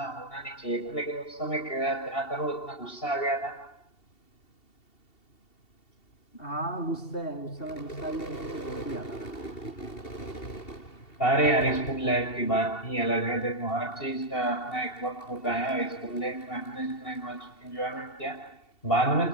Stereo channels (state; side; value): late; right; 2.7 ms